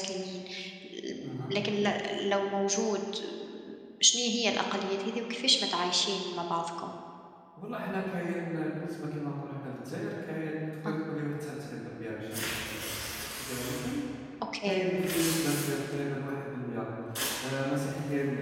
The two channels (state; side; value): identical; both; correlation 1.00